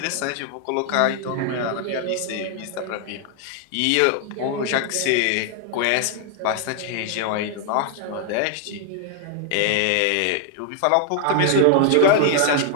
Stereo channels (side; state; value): both; different; correlation 0.00